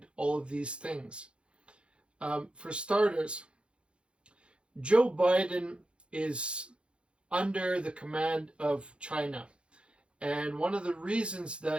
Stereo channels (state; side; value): late; left; 0.057 ms